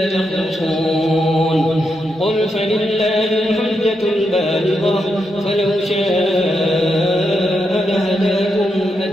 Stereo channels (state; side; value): normal; both; correlation 0.83